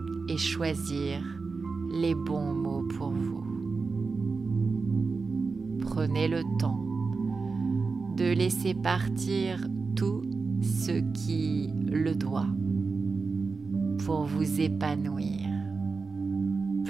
et choisir les bons mots pour vous. Prenez le temps de laisser partir tout ce qui le doit pour vous épanouir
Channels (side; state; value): left; quieter; 4.4 dB